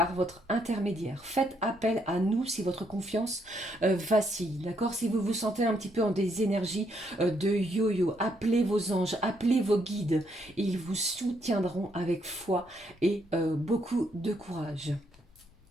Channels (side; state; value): both; normal; correlation 0.74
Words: votre intermédiaire. Faites appel à nous si votre confiance vacille. D'accord? Si vous vous sentez un petit peu en des énergies de yo-yo, appelez vos anges, appelez vos guides. Et ils vous soutiendront avec foi et beaucoup de courage.